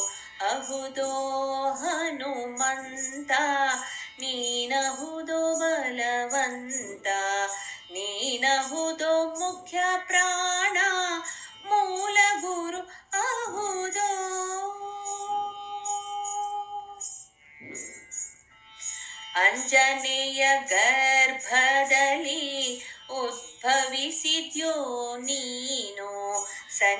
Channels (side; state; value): both; identical; correlation 1.00